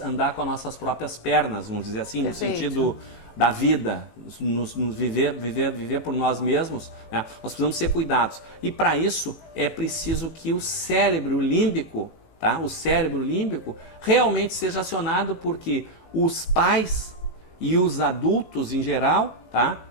com as nossas próprias pernas, vamos dizer assim, Perfeito. no sentido da vida, nos viver por nós mesmos, né? Nós precisamos ser cuidados. E para isso é preciso que o cérebro límbico, tá? O cérebro límbico realmente seja acionado, porque os pais e os adultos em geral, tá?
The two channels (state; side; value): late; right; 18 ms